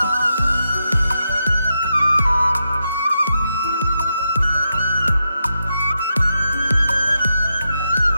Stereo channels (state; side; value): inverted; both; correlation -0.85